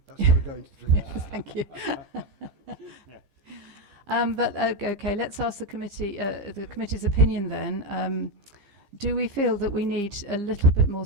That's what we're going to do. Yes, thank you. But okay, let's ask the committee's opinion then. Do we feel that we need a little bit more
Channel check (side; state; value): left; late; 15 ms